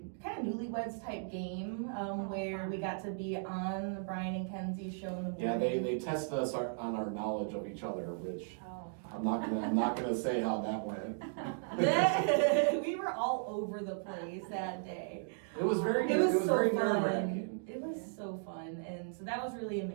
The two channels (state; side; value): silent; left; digital silence